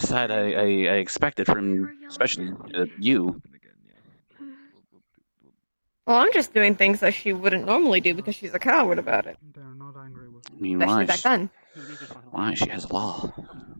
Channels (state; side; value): inverted; both; correlation -1.00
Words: I expected from, especially you. Well, I'm just doing things that she wouldn't normally do because she's a coward about it. I mean, Especially why? back then. Why? She has law.